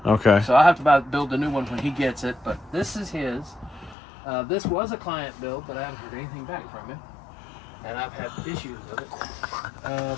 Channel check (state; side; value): drops out; right; at 4.0 s